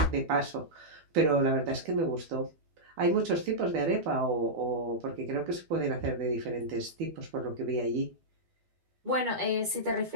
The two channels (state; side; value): late; left; 12 ms